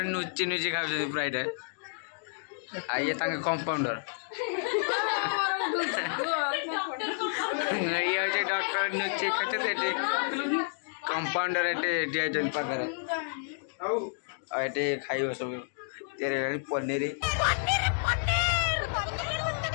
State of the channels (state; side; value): silent; right; digital silence